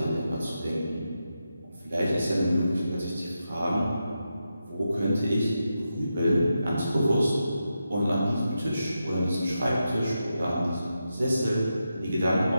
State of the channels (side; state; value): both; inverted; correlation -0.88